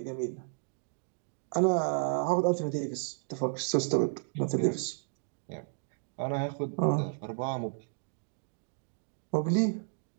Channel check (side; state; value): left; silent; digital silence